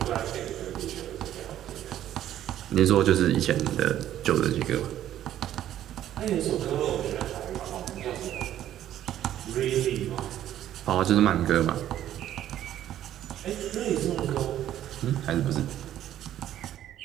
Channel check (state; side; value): quieter; left; 11.9 dB